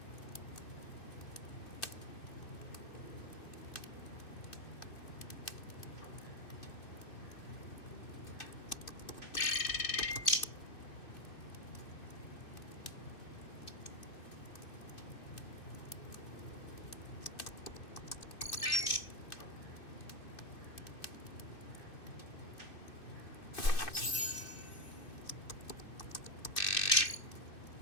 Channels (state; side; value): late; right; 2.6 ms